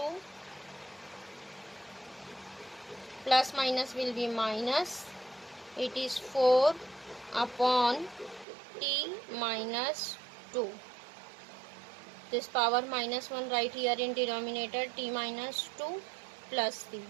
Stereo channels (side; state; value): left; drops out; at 8.5 s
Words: Plus minus will be minus. It is 4 upon t minus 2. This power minus 1 right here in denominator, t minus 2 plus 3.